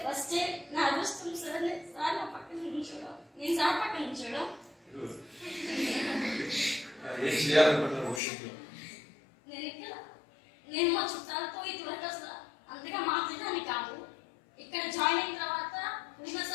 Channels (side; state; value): right; drops out; at 8.2 s